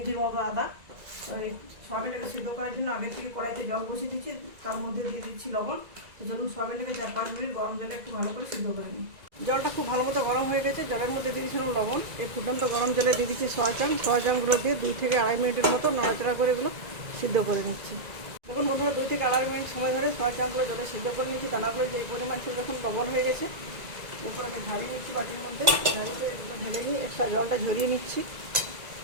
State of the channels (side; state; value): left; late; 1.9 ms